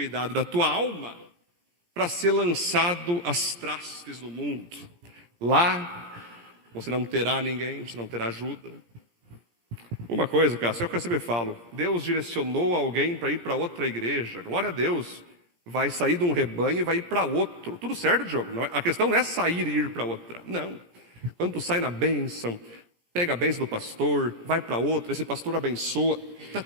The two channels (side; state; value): left; late; 17 ms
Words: da tua alma, para ser lançado às trastes do mundo. Lá, você não terá ninguém, você não terá ajuda. Uma coisa, Cássio, é o que eu sempre falo. Deus direcionou alguém para ir para outra igreja. Glória a Deus. Vai sair de um rebanho e vai ir para outro. Tudo certo, Diogo? A questão não é sair e ir para outra. Não. Quando tu sai na bênção, pega a bênção do pastor, vai para outra, esse pastor abençoa, tá